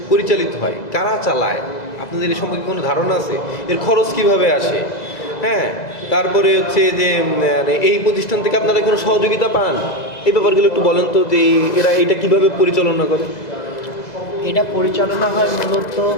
পরিচালিত হয়, কারা চালায়, আপনাদের এই সম্পর্কে কোনো ধারণা আছে? এর খরচ কিভাবে আসে? হ্যাঁ, তারপরে হচ্ছে যে এই প্রতিষ্ঠান থেকে আপনারা কোনো সহযোগিতা পান, এই ব্যাপারগুলো একটু বলেন তো, যে এরা এটা কিভাবে পরিচালনা করে? এটা পরিচালনা হয় মূলত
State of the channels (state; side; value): late; right; 2.0 ms